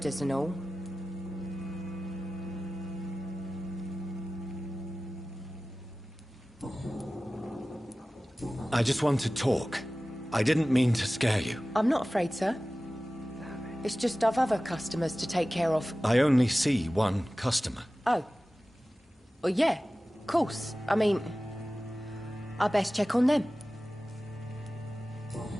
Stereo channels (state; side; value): normal; both; correlation 0.96